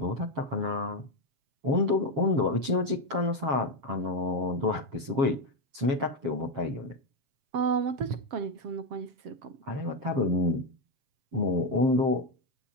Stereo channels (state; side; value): late; left; 7.4 ms